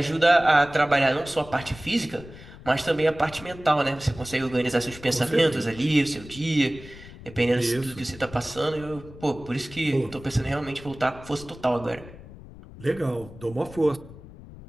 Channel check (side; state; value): left; noise; rumble, 17 dB below the sound